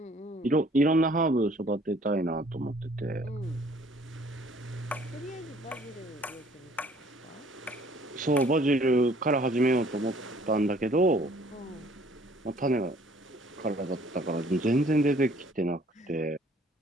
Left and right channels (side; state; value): both; normal; correlation 0.58